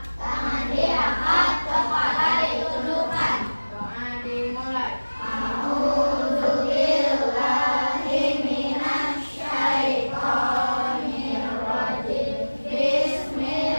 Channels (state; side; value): inverted; both; correlation -1.00